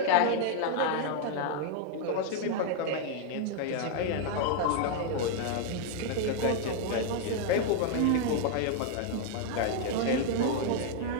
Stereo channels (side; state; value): both; different; correlation 0.00